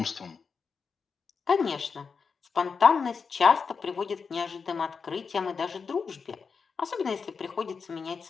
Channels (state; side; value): quieter; right; 5.4 dB